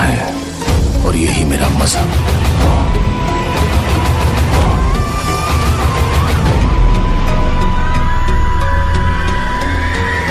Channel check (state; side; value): identical; both; correlation 1.00